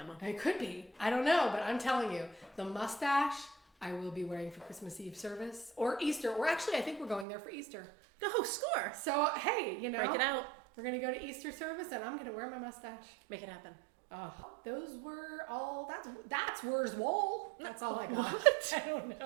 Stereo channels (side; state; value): left; drops out; at 7.2 s